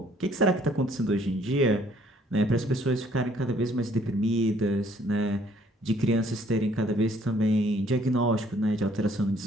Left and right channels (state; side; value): normal; both; correlation 0.62